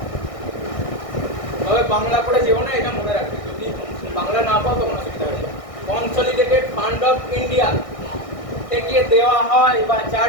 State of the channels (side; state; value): right; late; 1.6 ms